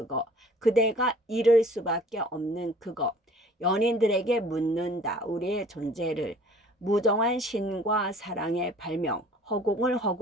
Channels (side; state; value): both; normal; correlation 0.51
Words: 그대가 잃을 수밖에 없는 그거 연인들에게 묻는다. 우리의 존재를 무정한 신과 사랑의 발명 허공을